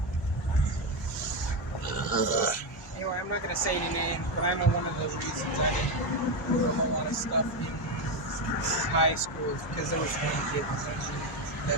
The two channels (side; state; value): both; normal; correlation 0.11